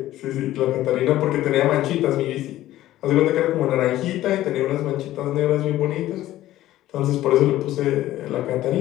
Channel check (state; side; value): quieter; right; 14.6 dB